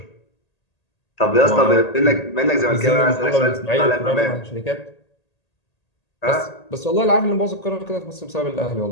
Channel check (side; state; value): right; late; 1.8 ms